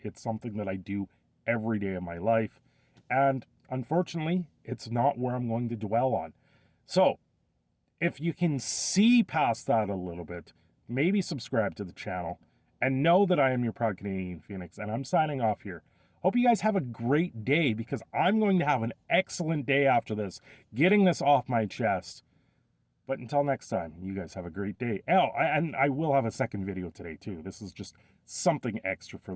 something that I do every day of my life, and unfortunately, it's not where I'm going to dwell on. So, if you can see past that a little bit, maybe subscribe to the channel, and know that I am your proud Canadian Phoenix, and I'm signing off here. Hope you guys have a great day, because I'm going to have an excellent day after this, getting this off my chest. But until next time, you guys have a great day. Oh, and I will have a second video today, too. This is just something extra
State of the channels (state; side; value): identical; both; correlation 1.00